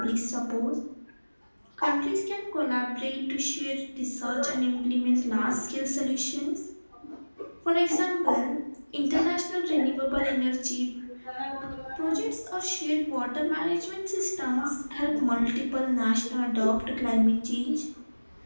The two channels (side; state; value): both; inverted; correlation -1.00